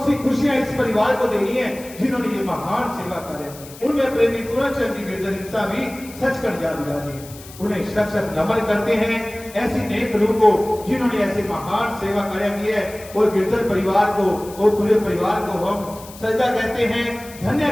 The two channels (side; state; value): left; noise; hiss, 18 dB below the sound